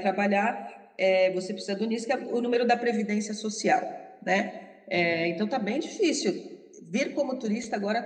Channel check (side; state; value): both; identical; correlation 1.00